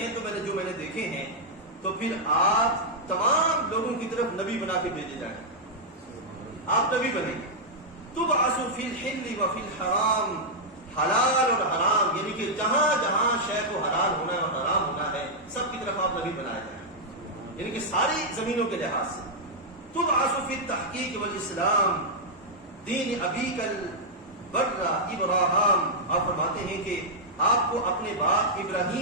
تو جو میں نے دیکھے ہیں تو پھر آپ تمام لوگوں کی طرف نبی بنا کے بھیجے جائیں. آپ نبی بنیں گے. تبعث فی الحل و فی الحرام، حلال اور حرام یعنی کہ جہاں جہاں شے کو حلال ہونا ہے اور حرام ہونا ہے سب کی طرف آپ نبی بنائے جائیں، یعنی کہ ساری زمینوں کے لحاظ سے. تبعث فی التحقیق والاسلام دین ابیک البر ابراہیم. آپ فرماتے ہیں کہ آپ کو اپنے باپ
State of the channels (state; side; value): normal; both; correlation -0.06